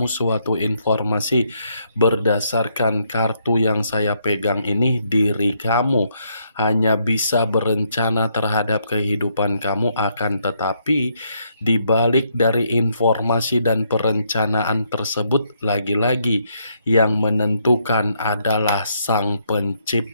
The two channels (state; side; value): inverted; both; correlation -0.74